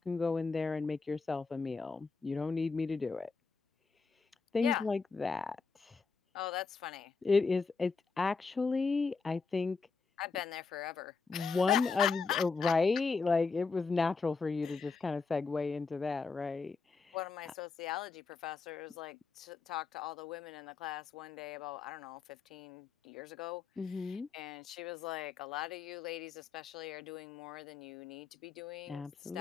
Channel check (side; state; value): right; quieter; 4.7 dB